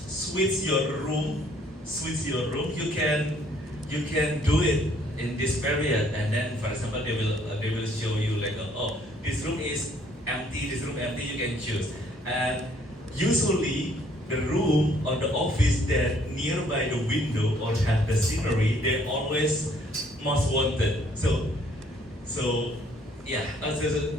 your room, you can do it in this period. And then, for example, they will show you like, oh, this room is empty, this room empty, you can choose. And usually the room or the office that nearby the window or have the scenery, they're always most wanted. So yeah,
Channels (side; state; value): both; normal; correlation 0.63